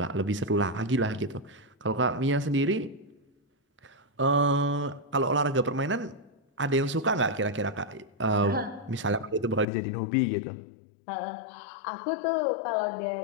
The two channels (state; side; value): drops out; right; at 9.7 s